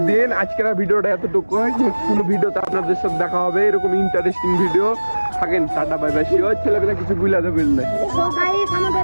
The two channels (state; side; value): inverted; both; correlation -1.00